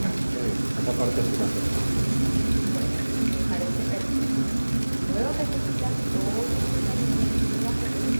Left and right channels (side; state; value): both; inverted; correlation -1.00